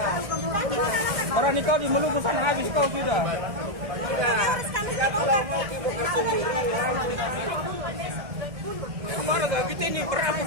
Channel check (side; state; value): left; late; 1.6 ms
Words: Orang nikah di Maluku sana habis kau sudah. Ya kalau mau buka sendiri. Kemarin kita ini berapa